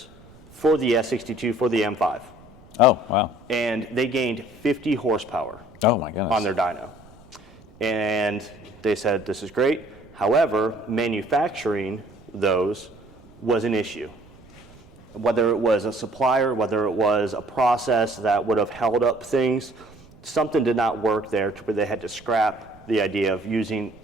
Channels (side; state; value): right; noise; rumble, 24 dB below the sound